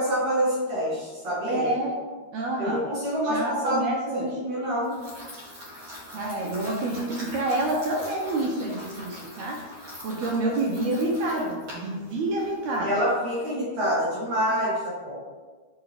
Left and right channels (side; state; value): left; late; 13 ms